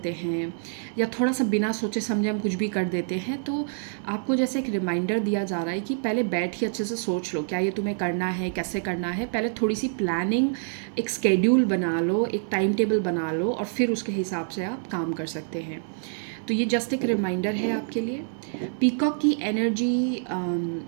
हैं या थोड़ा सा बिना सोचे समझे हम कुछ भी कर देते हैं. तो आपको जैसे एक रिमाइंडर दिया जा रहा है कि पहले बैठ के अच्छे से सोच लो क्या ये तुम्हें करना है, कैसे करना है. पहले थोड़ी सी प्लानिंग, एक स्केड्यूल बना लो, एक टाइम टेबल बना लो और फिर उसके हिसाब से आप काम कर सकते हैं. तो ये जस्ट एक रिमाइंडर है आपके लिए. पीकॉक की एनर्जी,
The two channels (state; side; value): silent; left; 60 dB below the other